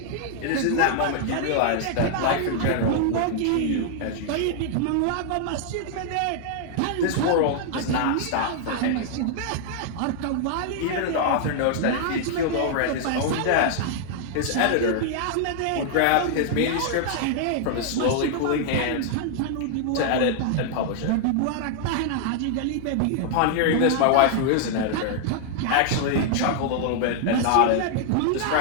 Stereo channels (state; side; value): different; both; correlation -0.01